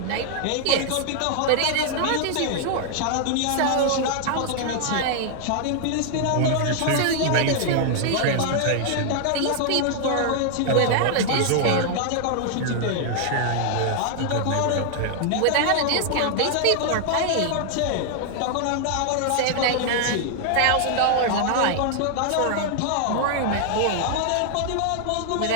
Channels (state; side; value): different; both; correlation 0.00